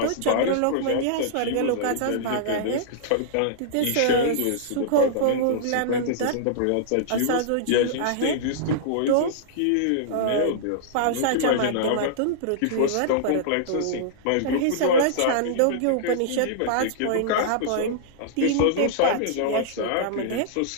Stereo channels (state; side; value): different; both; correlation -0.02